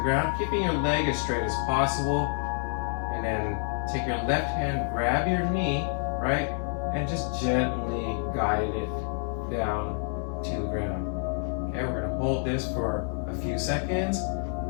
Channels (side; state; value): right; silent; 59 dB below the other